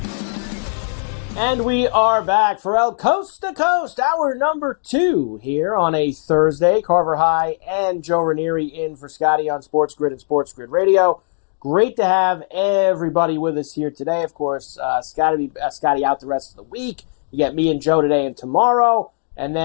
And we are back. Ferrall, coast to coast, hour number 2 here on a Thursday. Carver High and Joe Ranieri in for Scotty on SportsGrid and SportsGrid Radio. Great to have everybody with us here today. Of course, Scotty out the rest of the week. You get me and Joe today and tomorrow. And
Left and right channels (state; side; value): silent; right; digital silence